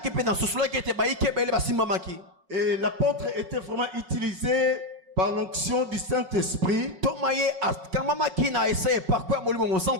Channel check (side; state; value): left; late; 5.4 ms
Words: Et l'apôtre était vraiment utilisé par l'onction du Saint-Esprit.